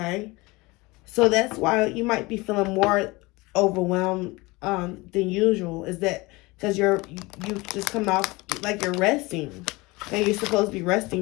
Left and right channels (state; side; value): quieter; right; 23.1 dB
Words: so that's why you might be feeling more overwhelmed than usual. Is that because you just coming off, like you're resting? Okay, you're supposed to be